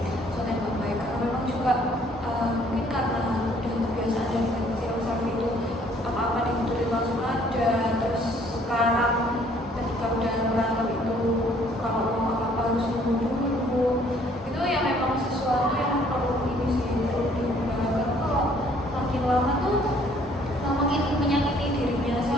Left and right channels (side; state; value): both; normal; correlation 0.61